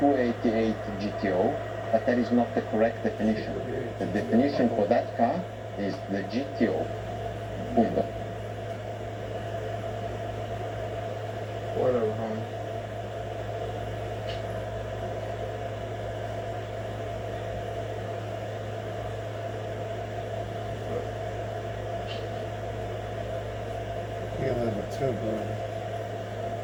288 GTO, but that is not the correct definition. The definition for that car is the GTO. Punto. too, boy.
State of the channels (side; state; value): both; identical; correlation 1.00